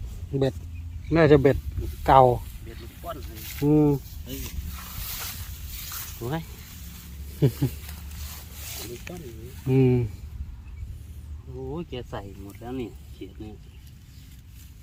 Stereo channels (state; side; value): identical; both; correlation 1.00